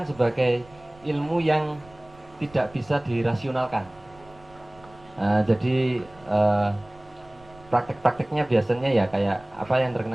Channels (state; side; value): noise; right; rumble, 25 dB below the sound